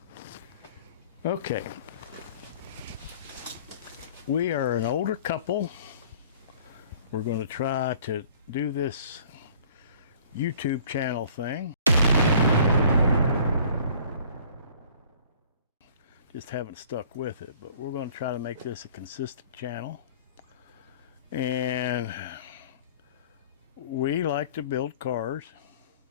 Okay. We are an older couple. We're going to try to do this YouTube channel thing. Just haven't stuck with it, but we're going to try to make this a consistent channel. And we like to build cars,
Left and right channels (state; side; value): inverted; both; correlation -0.51